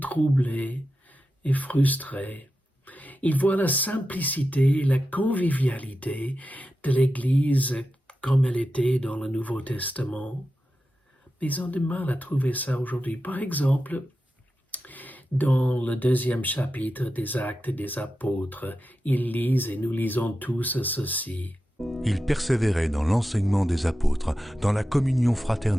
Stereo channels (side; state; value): both; normal; correlation 0.91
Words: et frustrés. Ils voient la simplicité et la convivialité de l'Église comme elle était dans le Nouveau Testament. Mais ils ont du mal à trouver ça aujourd'hui. Par exemple, dans le 2e chapitre des Actes des Apôtres, ils lisent, et nous lisons tous ceci. Ils persévéraient dans l'enseignement des apôtres, dans la communion